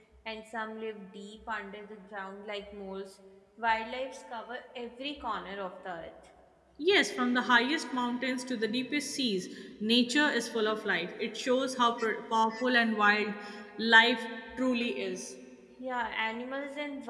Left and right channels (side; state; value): both; identical; correlation 1.00